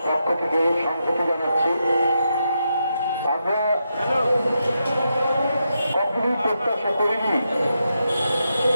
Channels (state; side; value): inverted; both; correlation -0.84